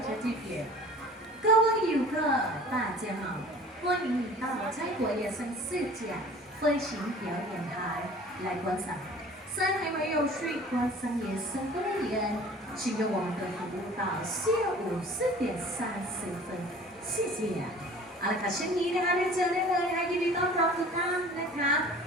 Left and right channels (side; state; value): both; normal; correlation 0.46